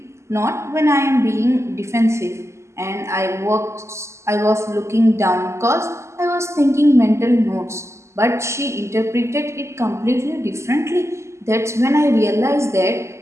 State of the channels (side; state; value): left; late; 0.13 ms